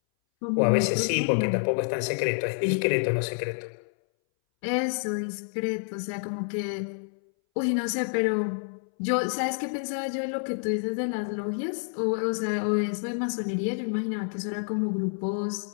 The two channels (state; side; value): silent; right; 59 dB below the other